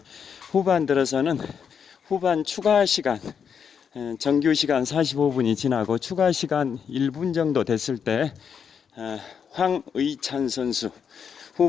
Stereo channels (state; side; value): quieter; right; 7.1 dB